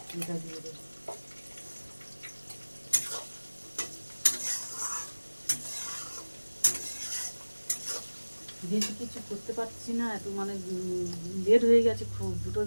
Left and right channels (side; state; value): both; inverted; correlation -1.00